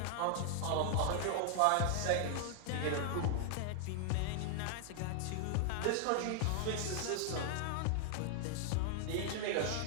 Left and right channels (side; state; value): both; different; correlation 0.00